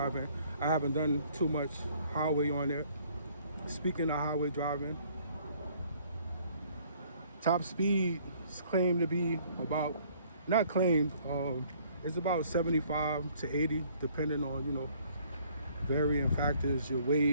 I haven't done too much highway on it. Speaking of highway driving, top speed is claimed to be about, not claimed, it's about 75 to 80, depending on, you know, varying factors, your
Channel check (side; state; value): both; inverted; correlation -0.60